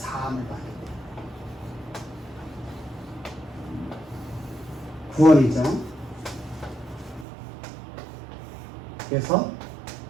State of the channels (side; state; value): left; drops out; at 7.2 s